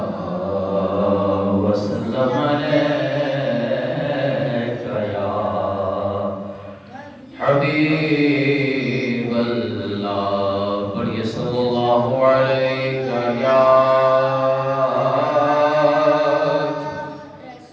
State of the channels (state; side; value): identical; both; correlation 1.00